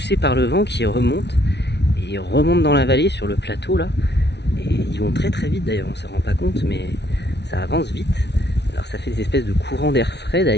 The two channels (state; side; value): late; right; 0.50 ms